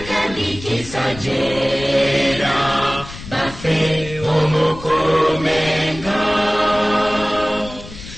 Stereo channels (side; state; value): left; noise; rumble, 14 dB below the sound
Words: kandi kisajera baffe omukuumenga